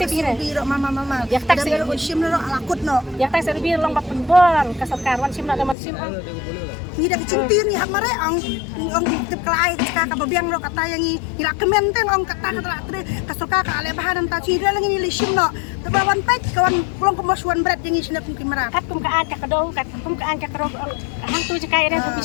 mama ya tak sim no alakut no ya tak serbi long bak penbon kasarkarwan sim na daman sim ni dah kecimpir ni hak mare ong tip kelai ka babiang lo kata yang ni ila kementeng ong kata tre kasuka ka ale bahan ta ci lang ni sim no tabawan pek kawan long kemasuan berat yang sini pun kimara kat kum ka an ka kado kat kum ka an ka kado hang tu je kai ere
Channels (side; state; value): right; drops out; at 5.8 s